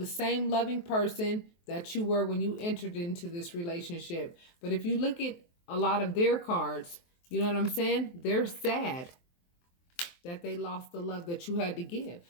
same loving person that you were when you entered into this relationship. But if you look at a lot of their cards, you know what I'm saying? They're sad that they lost the love that you had to give.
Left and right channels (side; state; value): right; late; 23 ms